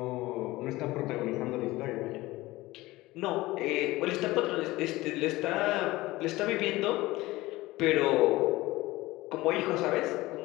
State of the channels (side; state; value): right; quieter; 19.1 dB